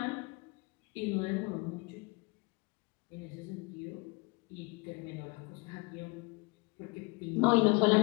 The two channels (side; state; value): right; quieter; 27.5 dB